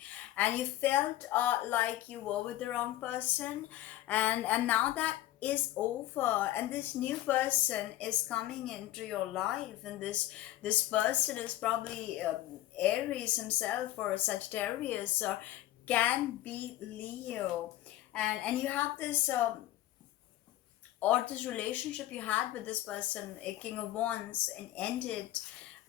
and you felt like you were with the wrong person, and now that is over, and this new person is coming into your life, and this person is probably Aries himself, or Sagittarius, or can be Leo. And you have this or this relationship you had with this person, a King of Wands, and ended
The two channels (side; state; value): right; quieter; 14.9 dB